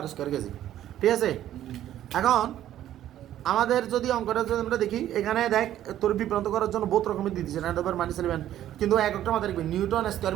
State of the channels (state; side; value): quieter; left; 12.2 dB